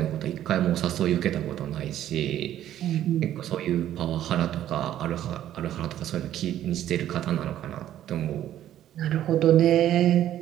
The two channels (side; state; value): left; quieter; 11.9 dB